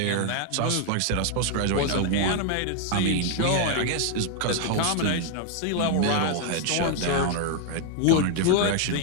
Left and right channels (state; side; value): different; both; correlation 0.00